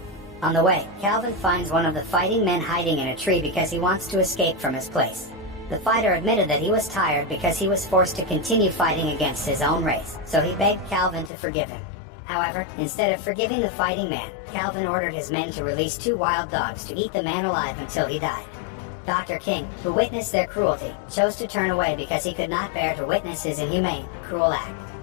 On the way, Calvin finds one of the fighting men hiding in a tree because he wants to escape from his place. The fighter admitted that he was tired because he was forced to continue fighting against his own race, so he begged Calvin to forgive him. However, instead of forgiving the fighting man, Calvin ordered his men to release two wild dogs to eat the man alive until he died. Dr. King, who witnessed their cruelty, chose to turn away because he could not bear to witness his inhumane, cruel act.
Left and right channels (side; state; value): right; drops out; at 11.3 s